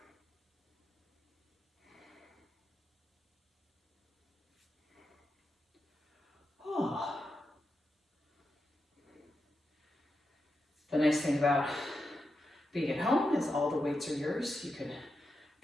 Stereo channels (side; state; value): both; normal; correlation 0.87